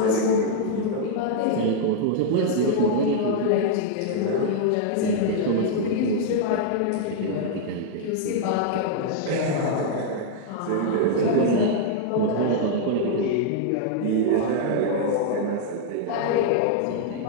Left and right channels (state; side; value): different; both; correlation -0.01